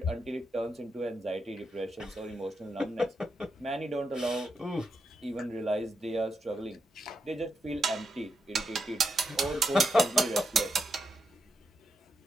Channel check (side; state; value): both; normal; correlation 0.83